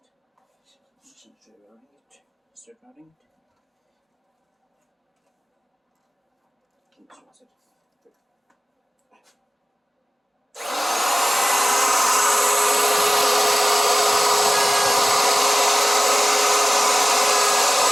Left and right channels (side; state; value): both; normal; correlation 0.96